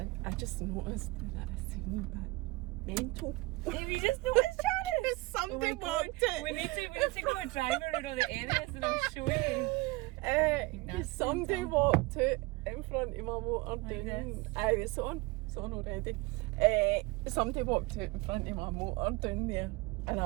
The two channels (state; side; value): quieter; left; 23.0 dB